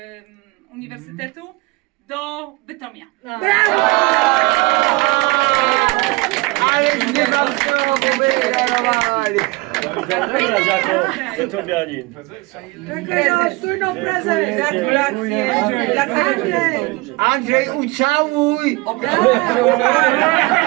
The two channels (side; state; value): left; quieter; 23.7 dB